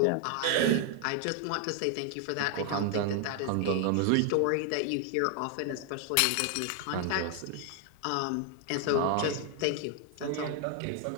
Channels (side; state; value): both; different; correlation 0.00